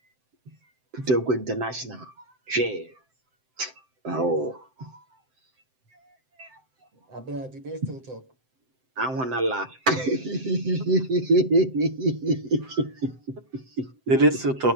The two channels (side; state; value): left; late; 7.8 ms